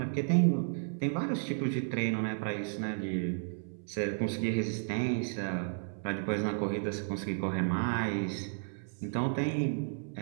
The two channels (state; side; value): silent; left; 56 dB below the other